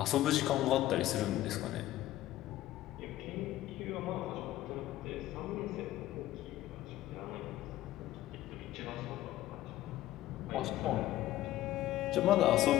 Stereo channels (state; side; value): quieter; right; 14.6 dB